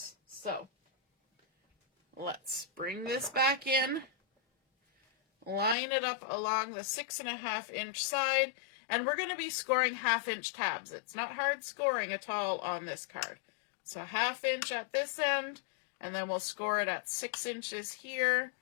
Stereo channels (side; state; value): right; drops out; at 5.8 s